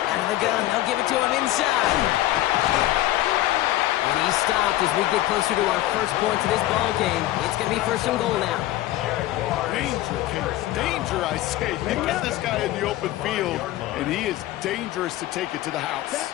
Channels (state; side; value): quieter; right; 15.4 dB